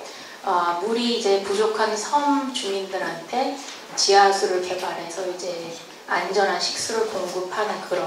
물이 이제 부족한 섬 주민들한테 지하수를 개발해서 이제 안전한 식수를 공급하는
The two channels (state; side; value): identical; both; correlation 1.00